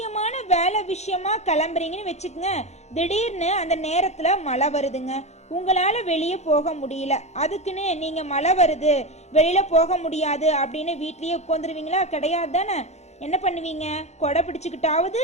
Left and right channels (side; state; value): right; late; 0.32 ms